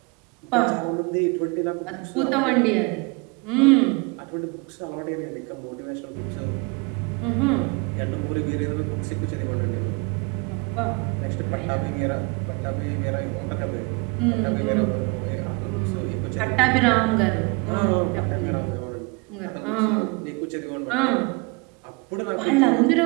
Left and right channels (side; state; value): left; quieter; 29.8 dB